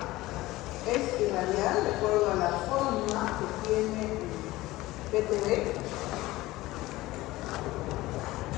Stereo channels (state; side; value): quieter; right; 18.2 dB